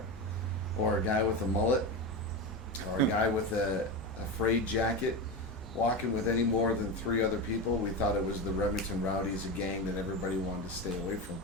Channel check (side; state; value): both; normal; correlation 0.19